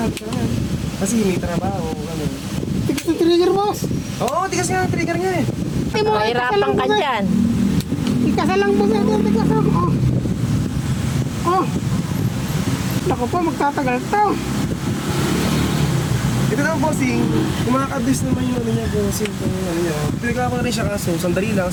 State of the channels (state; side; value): identical; both; correlation 1.00